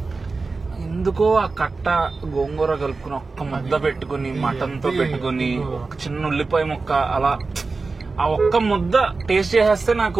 ఎందుకో ఆ కట్ట గోంగూర కలుపుకుని ఒక్క ముద్ద పెట్టుకుని మటన్ తో పెట్టుకుని ఒక చిన్న ఉల్లిపాయ ముక్క అలా ఆ ఒక్క ముద్ద టేస్ట్ చేసేస్తే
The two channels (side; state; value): left; quieter; 4.0 dB